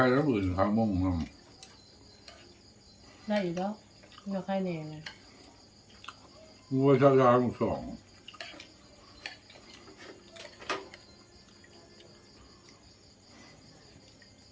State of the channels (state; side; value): identical; both; correlation 1.00